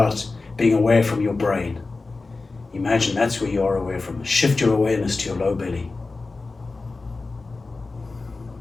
being aware from your brain. Imagine that's where you are aware from. Shift your awareness to your low belly.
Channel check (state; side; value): quieter; right; 3.7 dB